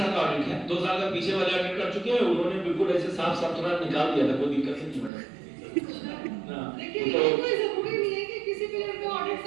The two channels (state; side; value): drops out; left; at 5.1 s